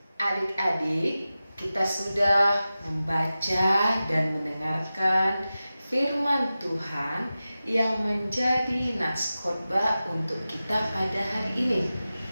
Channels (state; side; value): inverted; both; correlation -0.94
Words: Adik-adik, kita sudah membaca dan mendengarkan firman Tuhan yang menjadi nats khotbah untuk kita pada hari ini.